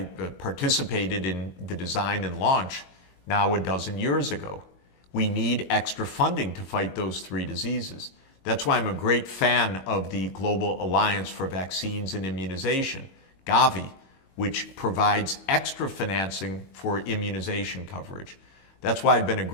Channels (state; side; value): late; right; 22 ms